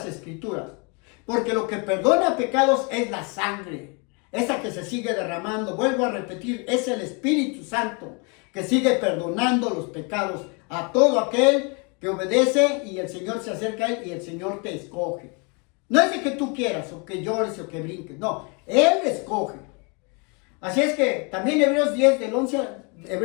escrituras. Porque lo que perdona pecados es la sangre, esa que se sigue derramando. Vuelvo a repetir, es el Espíritu Santo que sigue perdonando los pecados a todo aquel que obedece, y el Señor se acerca a él y el Señor te escoge. No es de que tú quieras o que llores o que brinques, no, Él escoge. Así es que también Hebreos 10, del 11,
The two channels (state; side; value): quieter; right; 33.0 dB